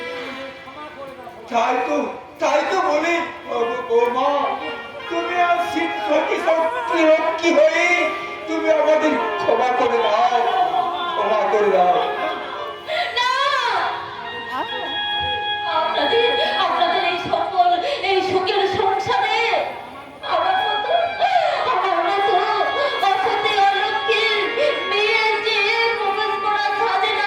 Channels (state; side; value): identical; both; correlation 1.00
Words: তাই তো বলি ও মা, তুমি আর কি হয়ে তুমি আমাদের ক্ষমা করে দাও, ক্ষমা করে দাও। না, আপনাদের এই সকল এই সুখের সংসারে আমার মতো অসতী অলক্ষীর মেয়ে যে প্রবেশ করা সাজে না